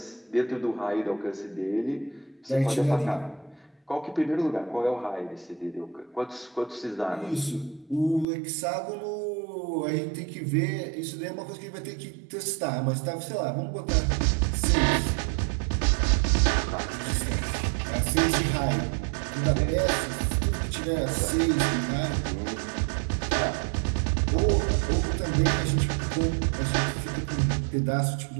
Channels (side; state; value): left; drops out; at 8.2 s